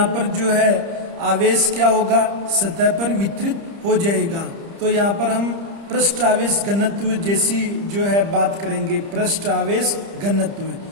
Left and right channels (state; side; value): late; left; 30 ms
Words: पर जो है आवेश क्या होगा, सतह पर वितरित हो जाएगा। तो यहाँ पर हम पृष्ठ आवेश घनत्व जैसी जो है बात करेंगे, पृष्ठ आवेश घनत्व।